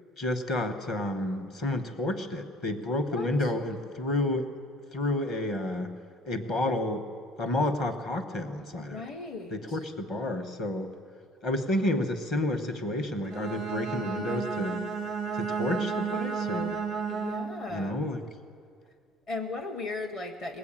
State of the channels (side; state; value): both; normal; correlation 0.52